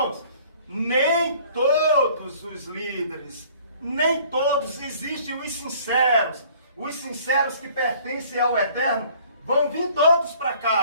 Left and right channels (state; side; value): inverted; both; correlation -0.54